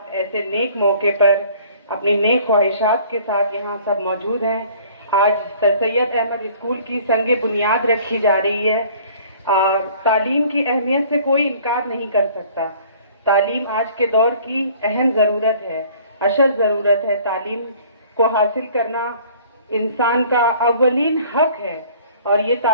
ایسے نیک موقع پر اپنی نیک خواہشات کے ساتھ یہاں سب موجود ہیں. آج سر سید احمد اسکول کی سنگ بنیاد رکھی جا رہی ہے. تعلیم کی اہمیت سے کوئی انکار نہیں کر سکتا. تعلیم آج کے دور کی اہم ضرورت ہے، اشد ضرورت ہے. تعلیم کو حاصل کرنا انسان کا اولین حق ہے اور یہ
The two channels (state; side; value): inverted; both; correlation -0.52